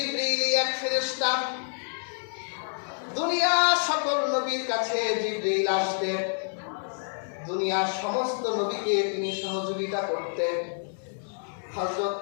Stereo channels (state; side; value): silent; right; digital silence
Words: এক ফেরেশতা, দুনিয়ার সকল নবীর কাছে জিবরীল আসতেন, দুনিয়ার সমস্ত নবীকে তিনি সহযোগিতা করতেন। হযরত